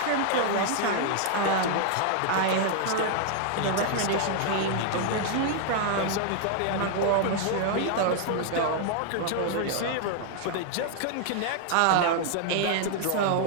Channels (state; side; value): different; both; correlation 0.00